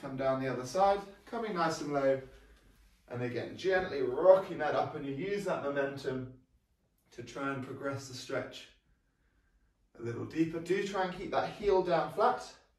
down the other side, coming nice and low. And again, gently rocking that up, and you use that momentum to try and progress the stretch a little deeper. Do try and keep that heel down flat.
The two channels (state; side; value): identical; both; correlation 1.00